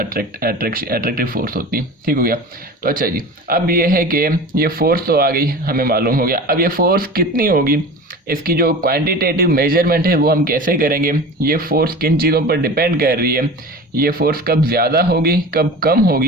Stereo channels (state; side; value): normal; both; correlation 0.34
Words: फोर्स होती है, ठीक हो गया। तो अच्छा जी अब ये है कि ये फोर्स तो आ गई हमें मालूम हो गया, अब ये फोर्स कितनी होगी, इसकी जो क्वांटिटेटिव मेजरमेंट है वो हम कैसे करेंगे, ये फोर्स किन चीज़ों पर डिपेंड कर रही है, ये फोर्स कब ज़्यादा होगी कब कम